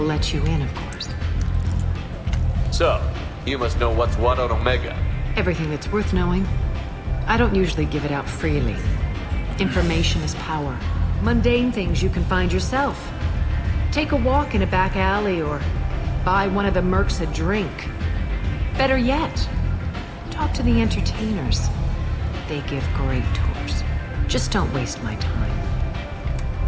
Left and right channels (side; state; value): both; identical; correlation 1.00